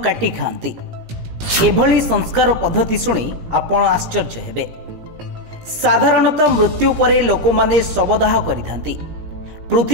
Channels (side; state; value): left; late; 17 ms